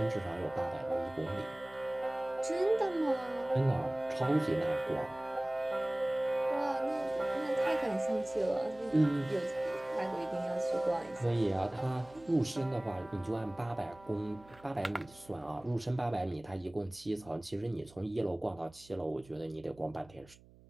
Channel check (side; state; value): right; noise; hum, 24 dB below the sound